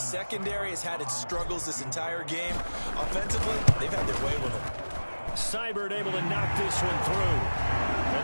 has had its struggles this entire game. Offensively, they've had their way with it. Seibert able to knock this one through. And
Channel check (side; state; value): both; inverted; correlation -1.00